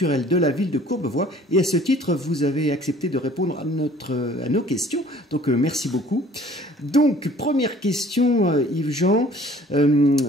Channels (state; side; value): normal; both; correlation 0.53